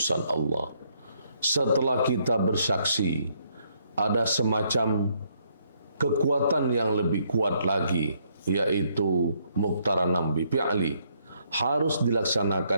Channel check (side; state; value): both; inverted; correlation -0.71